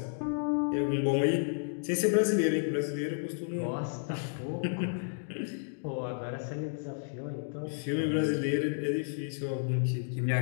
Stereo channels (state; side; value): silent; right; digital silence